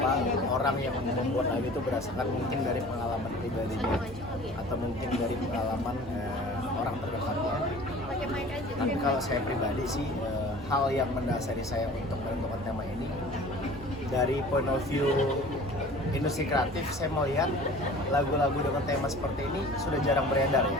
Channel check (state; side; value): normal; both; correlation 0.44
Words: orang yang membuat lagu itu berdasarkan mungkin dari pengalaman pribadinya atau mungkin dari pengalaman orang terdekatnya. Tapi kalau saya pribadi sih hal yang mendasari saya untuk menentukan tema ini dari point of view industri kreatif, saya melihat lagu-lagu dengan tema seperti ini sudah jarang beredar